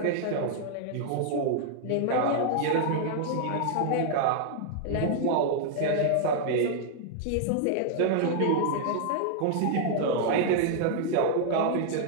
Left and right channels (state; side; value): different; both; correlation -0.01